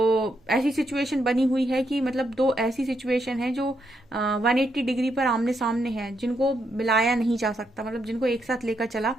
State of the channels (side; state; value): both; normal; correlation 0.79